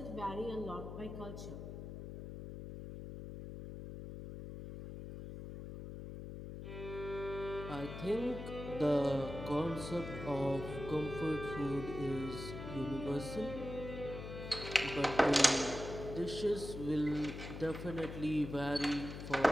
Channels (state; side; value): noise; left; hum, 9 dB below the sound